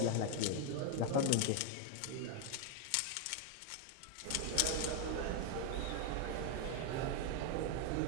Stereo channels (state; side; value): different; both; correlation 0.01